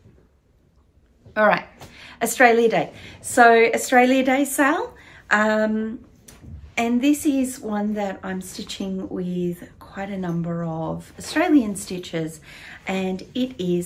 All right, Australia Day. So Australia Day sale. And this is one that I'm stitching with quite a number of Australian stitches, and it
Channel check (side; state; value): both; identical; correlation 1.00